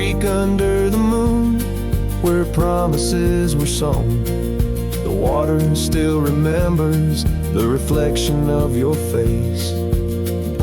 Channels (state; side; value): identical; both; correlation 1.00